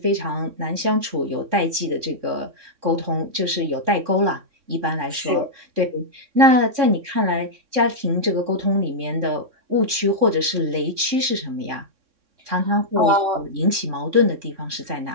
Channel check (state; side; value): late; left; 3.6 ms